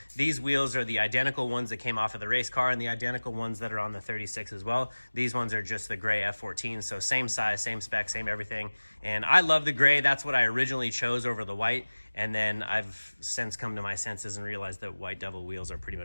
these wheels are the identical ones that came off of the race car and the identical ones that are on the 36 as well. These ones are just the gray F14, so same size, same spec, same everything. And I love the gray. That's what I originally chose over the white. And then I've since come to my senses and realized that white devil wheels are pretty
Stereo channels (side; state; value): both; inverted; correlation -1.00